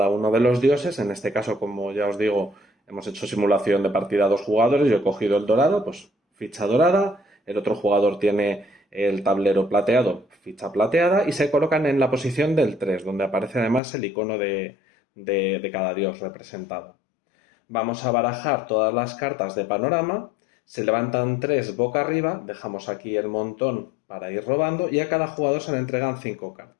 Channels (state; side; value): drops out; right; at 13.8 s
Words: uno de los dioses. En este caso, como ya os digo, hemos hecho simulación de partida a 2 jugadores. Yo he cogido el dorado, pues ficha dorada. El otro jugador tiene el tablero plateado, ficha plateada. Y se colocan en la posición del 3, donde aparece además el icono de cada dios representado. Vamos a barajar todas las cartas de panorama. Se levantan 3 boca arriba. Dejamos aquí el montón para ir robando. Y a cada jugador se le entregan 5